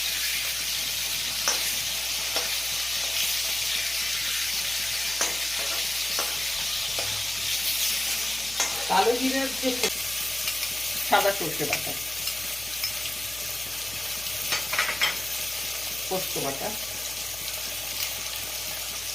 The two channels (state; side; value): noise; left; hum, 18 dB below the sound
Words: কালো জিরার যে সাদা সর্ষে বাটা, পোস্ত বাটা,